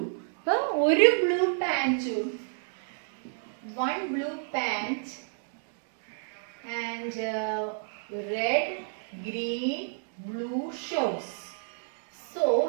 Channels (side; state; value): left; silent; digital silence